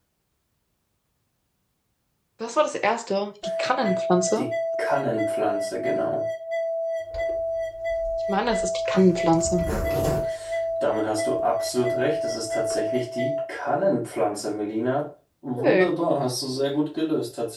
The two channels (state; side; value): identical; both; correlation 1.00